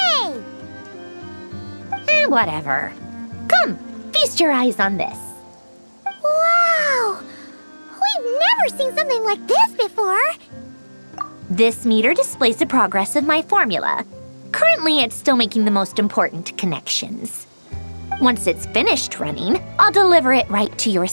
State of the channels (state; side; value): inverted; both; correlation -1.00